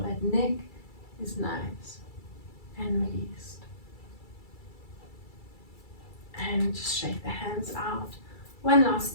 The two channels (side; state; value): right; late; 2.3 ms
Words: neck is nice and released. And just shake the hands out. One last